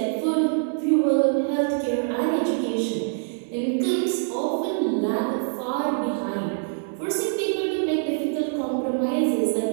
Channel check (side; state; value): left; silent; digital silence